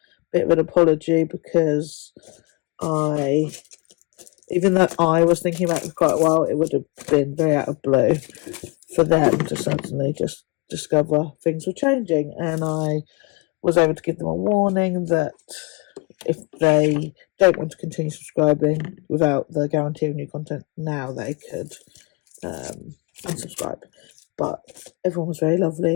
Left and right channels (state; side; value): quieter; right; 30.2 dB